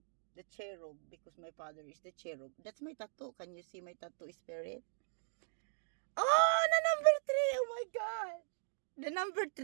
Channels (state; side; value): silent; left; digital silence